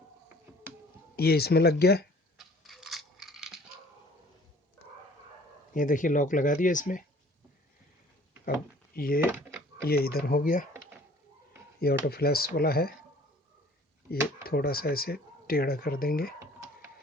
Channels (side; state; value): both; normal; correlation 0.52